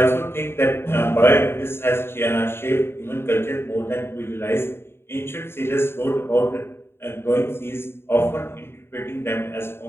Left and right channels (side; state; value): right; late; 0.11 ms